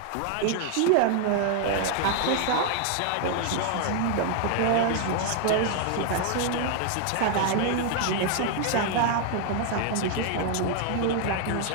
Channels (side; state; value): both; different; correlation 0.00